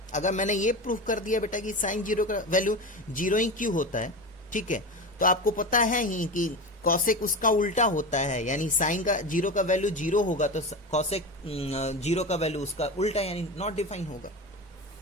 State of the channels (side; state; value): both; normal; correlation 0.25